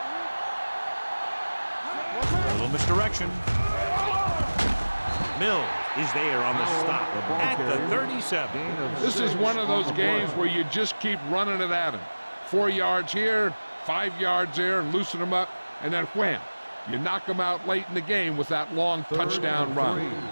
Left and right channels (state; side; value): inverted; both; correlation -1.00